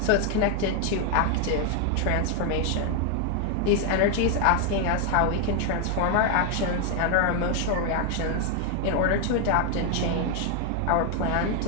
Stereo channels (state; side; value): different; both; correlation 0.00